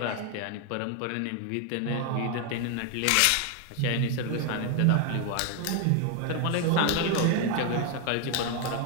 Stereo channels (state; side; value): different; both; correlation 0.01